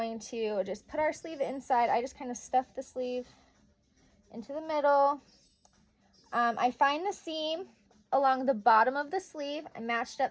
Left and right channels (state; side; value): identical; both; correlation 1.00